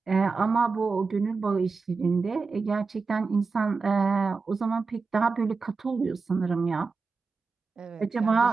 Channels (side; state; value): left; quieter; 4.5 dB